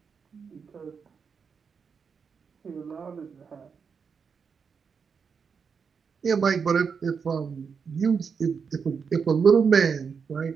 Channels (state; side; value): quieter; left; 6.0 dB